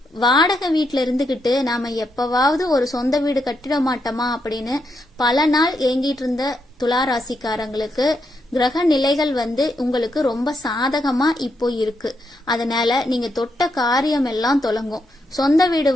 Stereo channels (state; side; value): normal; both; correlation 0.81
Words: வாடகை வீட்டுல இருந்துகிட்டு நாம எப்பவாவது ஒரு சொந்த வீடு கட்டிட மாட்டோமா அப்படின்னு பல நாள் ஏங்கிட்டு இருந்த துலா ராசிக்காரங்களுக்கு கிரக நிலைகள் வந்து உங்களுக்கு ரொம்ப சாதகமா இப்போ இருக்கு. அதனால நீங்க தொட்ட காரியம் எல்லாம் தொடங்கும். சொந்த வீடு